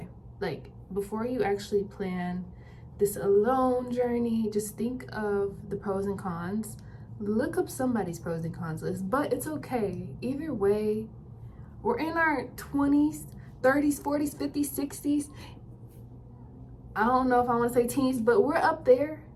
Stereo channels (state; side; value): identical; both; correlation 1.00